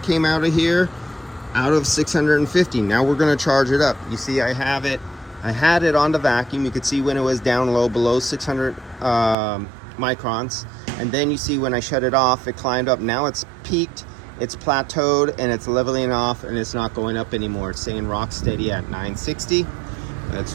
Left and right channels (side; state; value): left; drops out; at 9.3 s